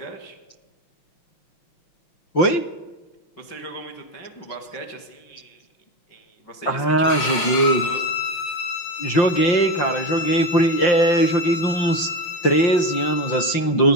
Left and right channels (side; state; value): right; late; 5.7 ms